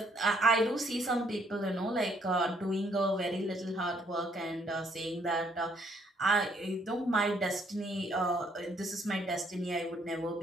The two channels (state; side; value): normal; both; correlation 0.68